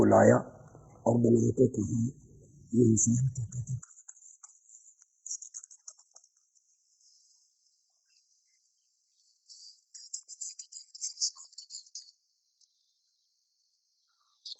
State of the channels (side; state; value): both; identical; correlation 1.00